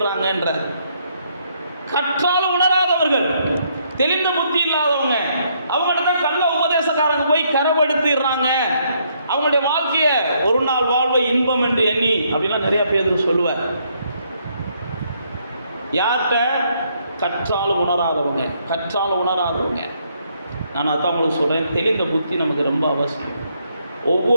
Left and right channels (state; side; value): inverted; both; correlation -0.71